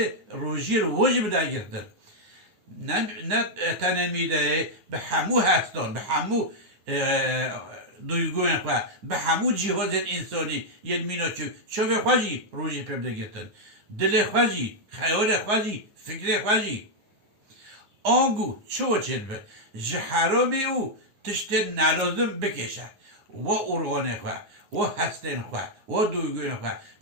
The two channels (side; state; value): left; late; 9.5 ms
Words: روژی رو واجب بده گرتن نه تنمیده به همو هستان به همو دویگون خواه به همو جهاز انسانی یه مینا چوه خواهی روژی پیدا گرتن دل خواهی خیال خواهی فکر خواهی آنگو چو چید به جه حرامی او تشت نلازم بکشه و ارغانه خواه و هستن خواه و دوگوین خواه